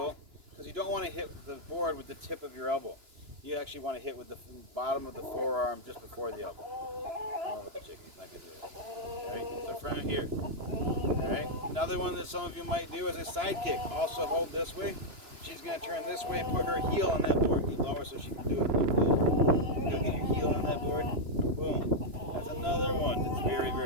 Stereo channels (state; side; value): late; left; 2.9 ms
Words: because you don't want to hit the board with the tip of your elbow. You actually want to hit with the bottom of the forearm just before the elbow. I don't know what the chicken's not going to do it. All right, so from here. All right, another one that some of you might do is a side kick. Also hold this way. She's going to turn this way and put her heel on that board. Get lower so she can do it like this. Go get your heel on that board. Boom. That's another one that's